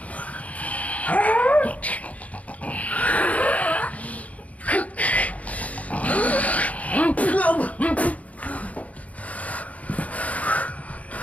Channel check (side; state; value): right; late; 0.068 ms